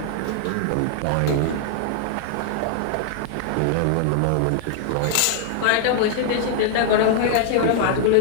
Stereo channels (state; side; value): different; both; correlation -0.01